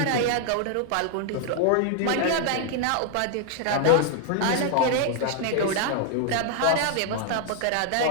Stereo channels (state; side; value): different; both; correlation 0.00